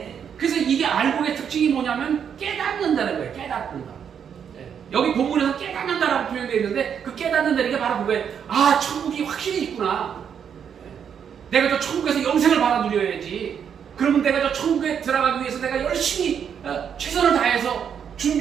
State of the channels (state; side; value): quieter; left; 7.8 dB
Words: 그래서 이게 알곡의 특징이 뭐냐면 깨닫는다는 거예요. 깨닫는다. 여기 본문에서 깨닫는다라고 표현되어 있는데 그 깨닫는다는 게 바로 그거예요. 아, 천국이 확실히 있구나. 내가 저 천국에서 영생을 받아 누려야지. 그러면 내가 저 천국에 들어가기 위해서 내가 열심히 최선을 다해서